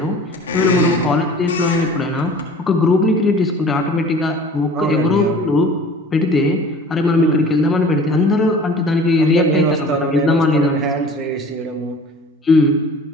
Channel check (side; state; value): both; normal; correlation 0.45